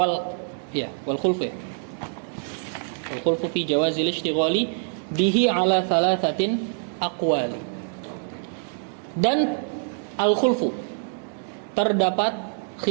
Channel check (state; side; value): silent; left; digital silence